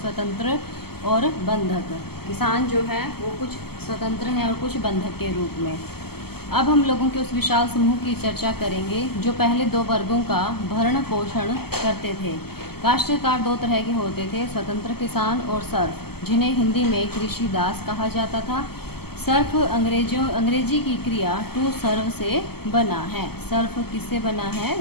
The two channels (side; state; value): right; late; 0.96 ms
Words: स्वतंत्र और बंधक। किसान जो है वो कुछ स्वतंत्र हैं और कुछ बंधक के रूप में। अब हम लोगों के उस विशाल समूह की चर्चा करेंगे जो पहले दो वर्गों का भरण पोषण करते थे। काश्तकार दो तरह के होते थे, स्वतंत्र किसान और सर्फ, जिन्हें हिंदी में कृषि दास कहा जाता था। सर्फ अंग्रेजी की क्रिया टू सर्व से बना है। सर्फ किससे बना है